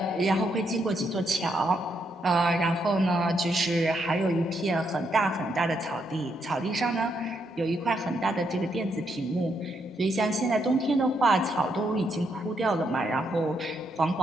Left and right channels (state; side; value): normal; both; correlation 0.78